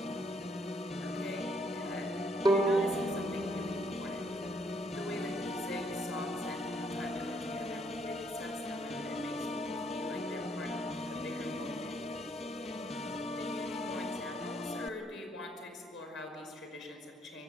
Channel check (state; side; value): normal; both; correlation 0.70